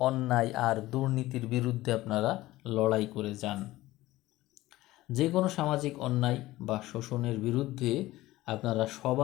অন্যায় আর দুর্নীতির বিরুদ্ধে আপনারা লড়াই করে যান। যে কোনো সামাজিক অন্যায় বা শোষণের বিরুদ্ধে আপনারা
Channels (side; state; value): right; quieter; 17.3 dB